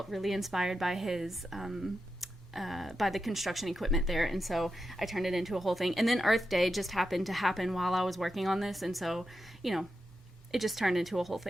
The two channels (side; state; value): both; normal; correlation 0.88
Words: really inspired by his by the construction equipment there, and so I turned it into a whole thing. And then Earth Day just happened to happen while I was working on this, and so, you know, it just turned into a whole